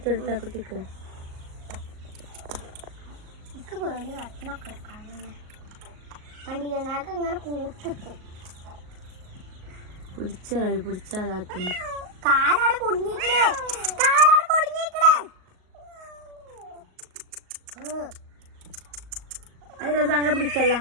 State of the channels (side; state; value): left; late; 38 ms